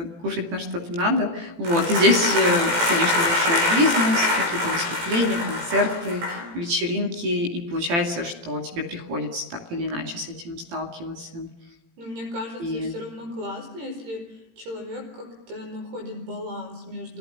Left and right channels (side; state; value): left; late; 18 ms